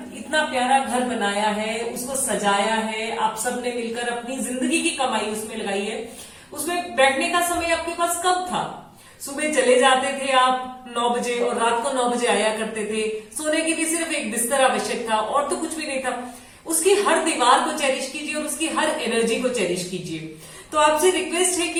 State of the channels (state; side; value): identical; both; correlation 1.00